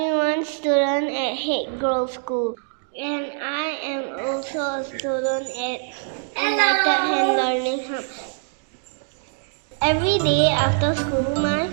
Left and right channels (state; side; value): silent; left; 63 dB below the other